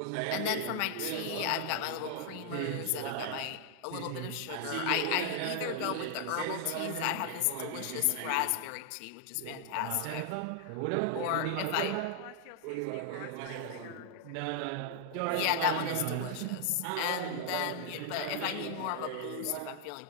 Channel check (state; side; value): different; both; correlation 0.00